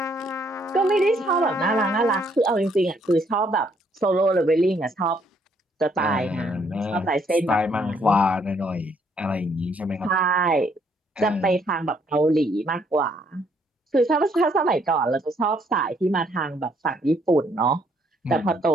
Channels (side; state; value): both; normal; correlation 0.68